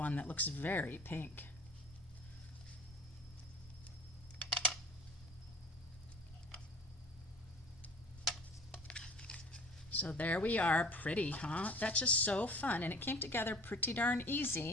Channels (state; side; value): normal; both; correlation 0.46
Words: that looks very pink. So there we are, pretty, huh? That's just so fun, and it came together pretty darn